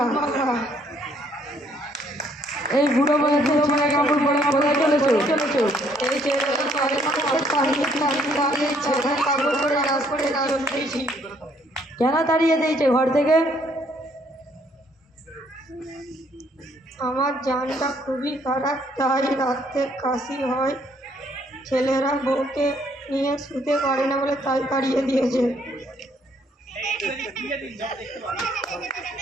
এই বুড়ো বয়সে ছেলে কাপড় পরে কোথায় চলেছো? কেন তাড়িয়ে দিয়েছে ঘর থেকে? আমার জানটা খুবই খারাপ, তাই রাতে কাশি হয়, ছেলেরা বউকে নিয়ে শুতে পারে না বলে তাই তাড়িয়ে দিয়েছে।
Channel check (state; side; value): normal; both; correlation 0.66